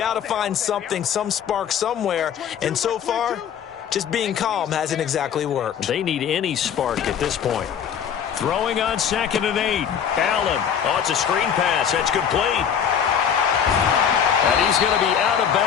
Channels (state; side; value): quieter; right; 8.2 dB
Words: to find something, some spark somewhere. And so far, just being calm hasn't exactly worked. They need any spark at this point. Throwing on 2nd and 8. Allen. Oh, it's a screen pass. That's complete. And he's going to be out of